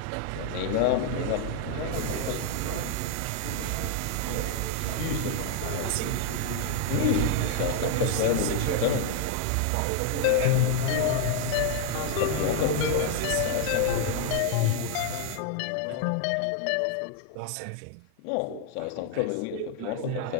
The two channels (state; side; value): different; both; correlation 0.00